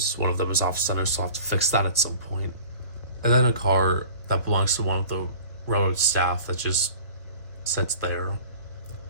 one of them is off center, so I'll have to fix that at some point. And then a car that belongs to one of the railroad staff that just sits there.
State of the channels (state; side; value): inverted; both; correlation -0.43